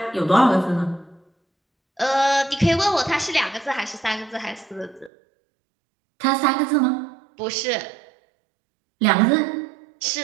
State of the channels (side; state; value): left; drops out; at 5.1 s